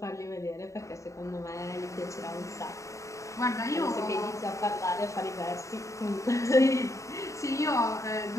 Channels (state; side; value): late; right; 0.15 ms